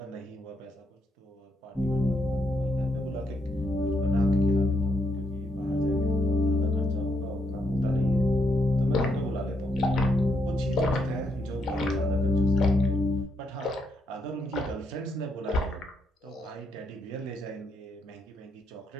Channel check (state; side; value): normal; both; correlation 0.78